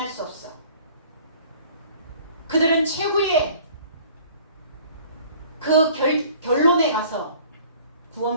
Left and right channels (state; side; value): inverted; both; correlation -0.51